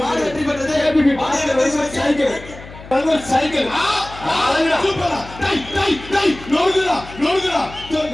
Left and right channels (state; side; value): noise; left; hum, 17 dB below the sound